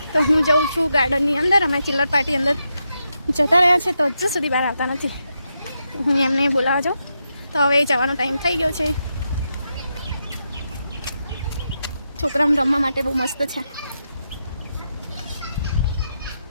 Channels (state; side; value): inverted; both; correlation -0.85